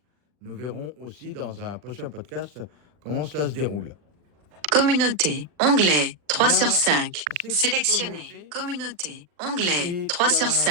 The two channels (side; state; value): left; late; 40 ms